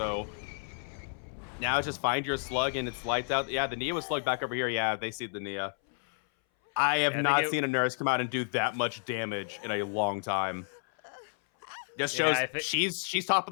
now it's just find your slug and it's lights out. Yeah, the Nia was slugged back over here. Yeah, they see the Nia. I have not seen a Nurse come out and do that much damage in a long time. Just shows she's top of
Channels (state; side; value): silent; right; 57 dB below the other